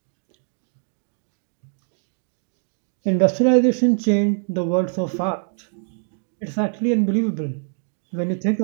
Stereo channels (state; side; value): silent; left; digital silence